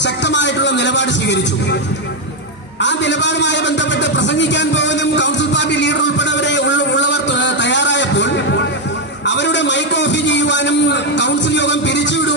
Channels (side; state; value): both; normal; correlation 0.04